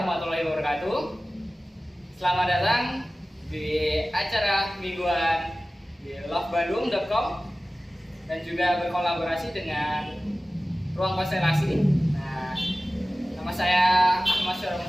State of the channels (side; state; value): both; normal; correlation 0.96